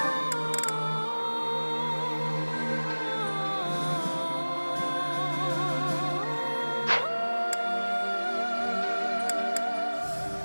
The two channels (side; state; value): both; inverted; correlation -1.00